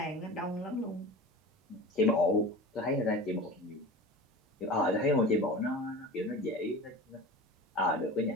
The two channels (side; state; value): both; normal; correlation 0.35